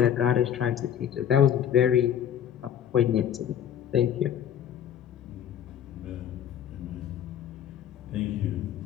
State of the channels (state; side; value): quieter; right; 9.7 dB